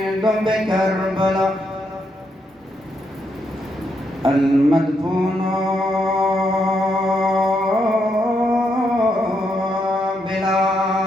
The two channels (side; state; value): both; normal; correlation 0.79